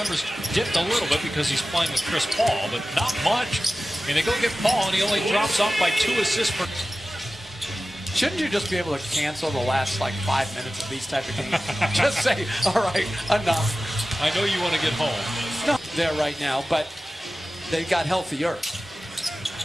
dipped a little bit because he's playing with Chris Paul, but not much. And they go get Paul, and he only drops off by 2 assists per... Shouldn't you just be able to cancel the last, 5 minutes of these type of games? Just say, all right, enough. I know you want to get home. No, there right now, but they got healthier.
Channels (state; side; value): normal; both; correlation 0.95